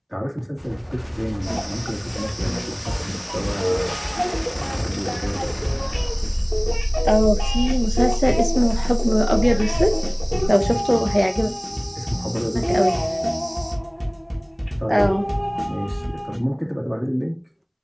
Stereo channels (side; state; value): both; identical; correlation 1.00